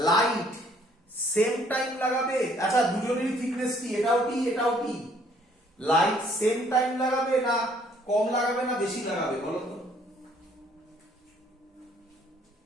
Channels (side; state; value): both; normal; correlation 0.62